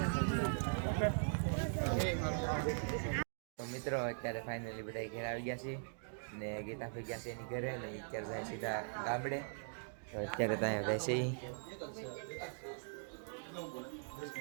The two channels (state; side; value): silent; left; digital silence